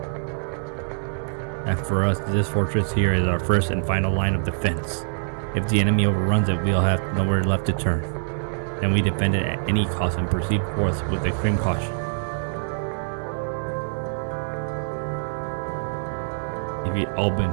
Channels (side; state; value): left; silent; digital silence